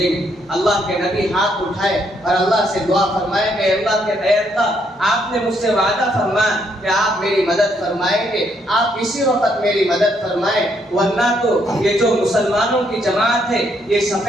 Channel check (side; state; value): both; normal; correlation 0.73